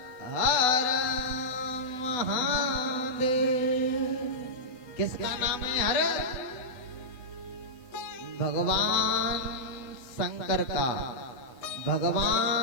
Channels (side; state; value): right; late; 8.0 ms